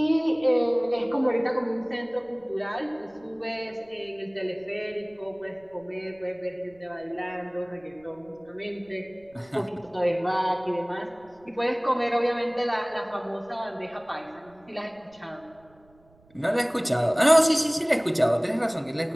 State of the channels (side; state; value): right; noise; rumble, 30 dB below the sound